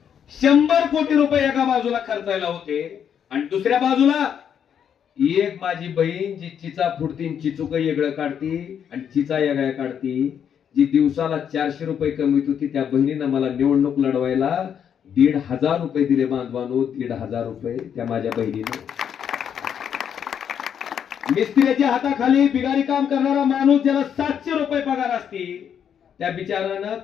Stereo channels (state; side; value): quieter; right; 8.4 dB